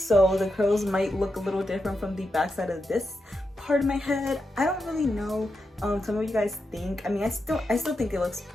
the curls might look a little different from the back side of this part of my head. I don't really know. Some of you guys think, I mean, I still think it looks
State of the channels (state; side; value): normal; both; correlation 0.87